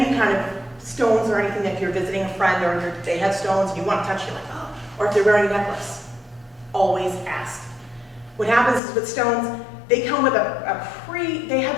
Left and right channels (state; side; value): drops out; right; at 8.8 s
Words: kind of stones or anything, if you're visiting a friend or they have stones and you want to touch, you're like, oh, or if they're wearing a necklace, always ask. What happens is with stones, they come with they have